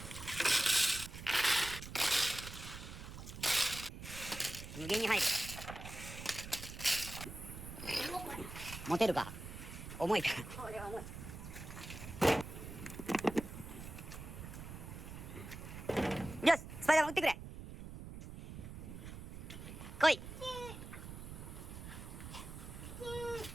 無限に入る。持てるか。重いから。これは重い。よし、スパイダーマン撃ってくれ。来い。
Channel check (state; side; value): noise; right; rumble, 10 dB below the sound